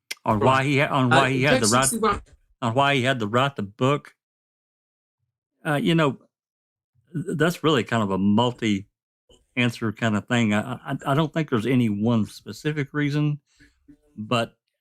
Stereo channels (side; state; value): both; identical; correlation 1.00